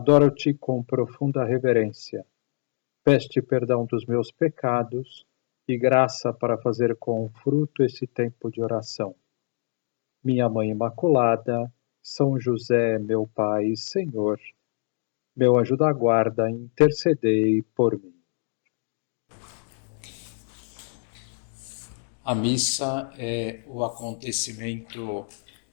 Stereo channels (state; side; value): silent; right; digital silence